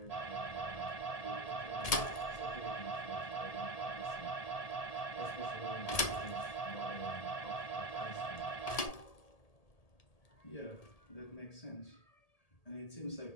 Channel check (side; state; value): right; late; 1.8 ms